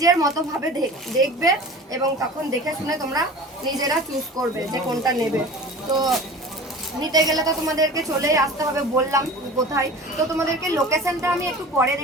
মতোভাবে দেখবে, এবং তখন দেখে শুনে তোমরা নিজেরা চুজ করবে যে কোনটা নেবে। তো নিতে গেলে তো তোমাদেরকে চলেই আসতে হবে, বললাম কোথায়। তো তোমাদেরকে লোকেশনটা আমি একটু পরে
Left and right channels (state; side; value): normal; both; correlation 0.39